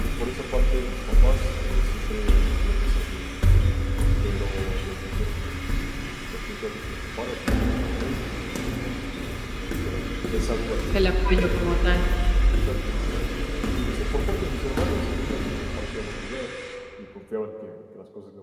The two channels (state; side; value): identical; both; correlation 1.00